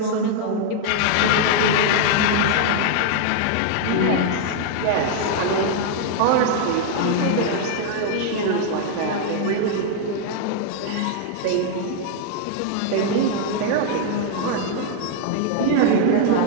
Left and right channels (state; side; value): different; both; correlation 0.00